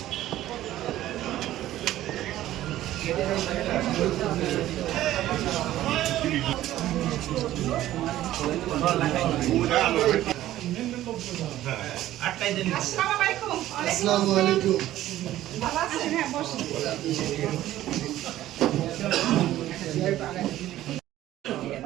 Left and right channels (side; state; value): left; quieter; 14.0 dB